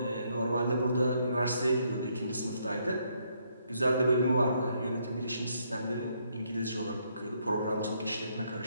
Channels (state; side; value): inverted; both; correlation -0.73